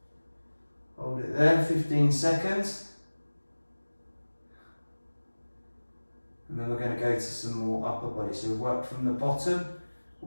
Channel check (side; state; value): both; inverted; correlation -1.00